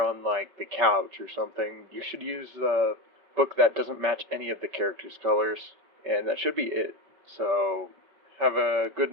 on, like, the couch or something, you should use a book that doesn't match any of the characters' colors, and that should be it. So, have a good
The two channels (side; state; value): left; late; 5.2 ms